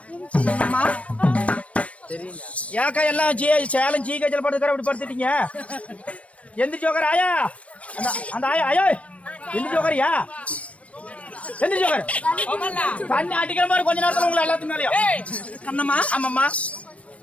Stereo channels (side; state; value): right; late; 0.064 ms